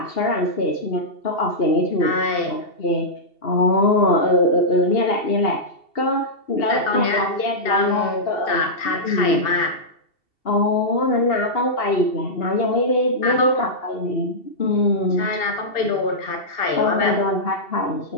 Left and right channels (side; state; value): right; late; 2.7 ms